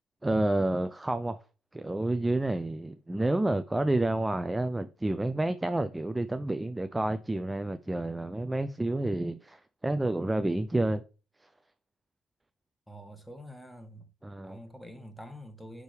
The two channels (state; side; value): normal; both; correlation 0.98